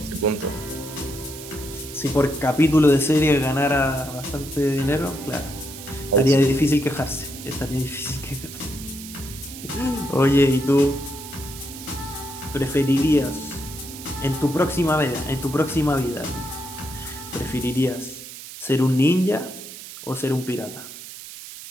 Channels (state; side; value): noise; right; hiss, 13 dB below the sound